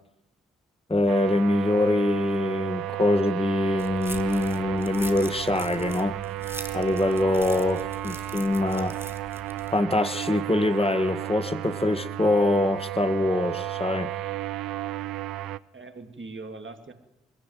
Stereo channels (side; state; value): both; normal; correlation 0.74